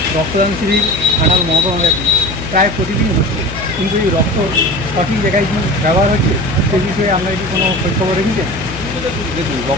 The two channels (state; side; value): noise; left; hum, 10 dB below the sound